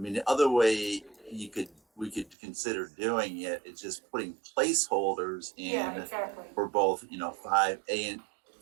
the other way we could consider doing it is just putting placeholders in exactly. for both, 5A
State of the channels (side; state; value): left; drops out; at 2.4 s